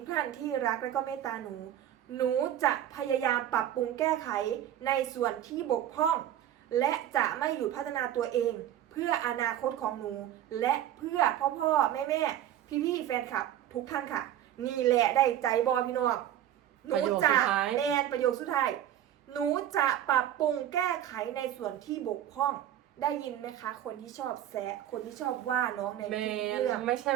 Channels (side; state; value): left; quieter; 11.5 dB